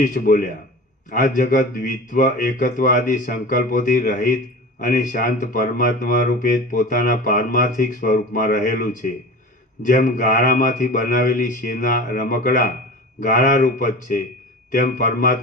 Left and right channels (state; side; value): normal; both; correlation 0.35